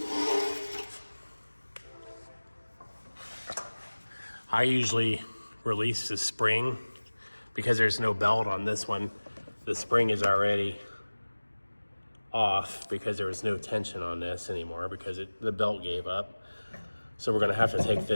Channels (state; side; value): inverted; both; correlation -1.00